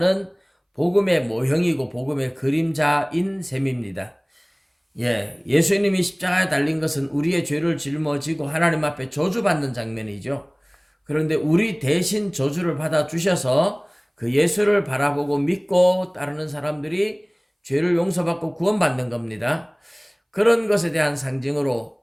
복음의 모형이고 복음의 그림자인 셈입니다. 예수님이 십자가에 달린 것은 우리의 죄를 짊어지고 하나님 앞에 저주받는 장면이죠. 그런데 우리 대신 저주를 받아 주셔서 그 예수를 바라보고 믿고 따르는 사람들이 죄를 용서받고 구원받는 겁니다. 그런 것에 대한 상징으로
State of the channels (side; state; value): both; identical; correlation 1.00